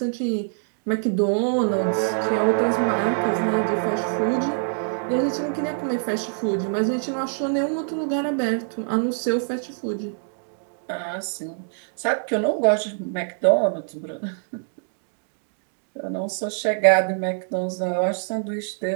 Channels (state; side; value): silent; left; digital silence